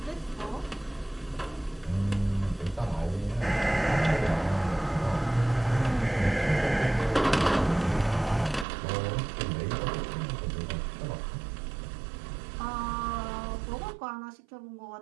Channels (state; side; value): drops out; left; at 8.7 s